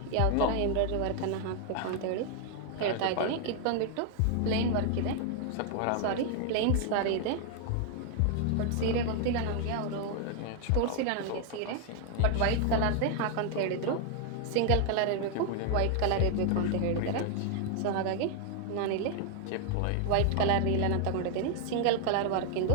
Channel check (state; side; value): different; both; correlation 0.00